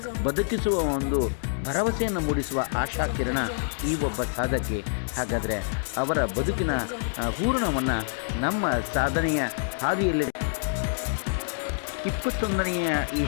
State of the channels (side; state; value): right; silent; digital silence